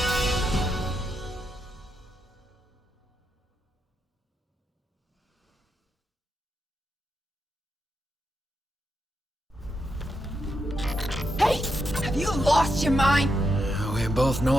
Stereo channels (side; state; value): both; normal; correlation 0.84